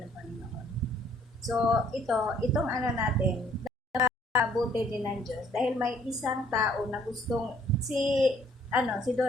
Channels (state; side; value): normal; both; correlation 0.62